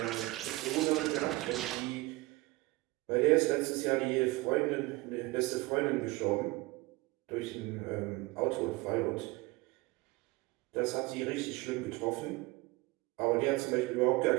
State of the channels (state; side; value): quieter; left; 21.9 dB